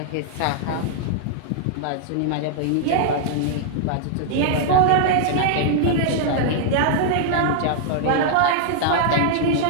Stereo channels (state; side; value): different; both; correlation -0.01